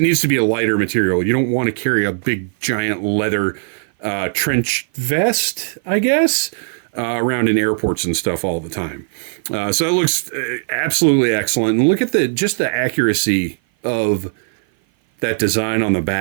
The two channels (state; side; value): silent; left; 56 dB below the other